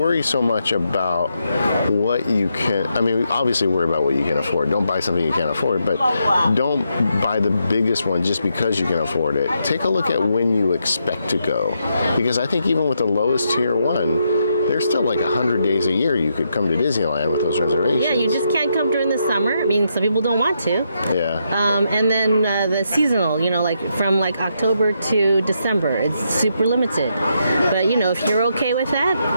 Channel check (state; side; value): inverted; both; correlation -0.80